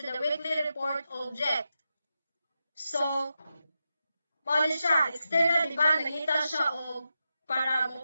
the weekly report object. So, mo siya, external, diba, nangita siya o para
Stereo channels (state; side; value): inverted; both; correlation -0.88